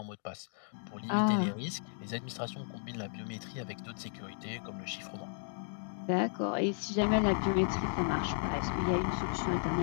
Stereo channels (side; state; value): right; silent; digital silence